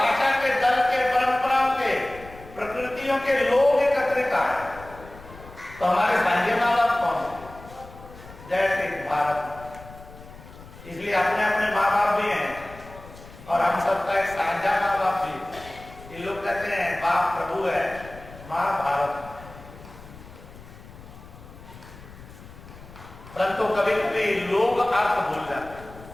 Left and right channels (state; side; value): noise; left; rumble, 18 dB below the sound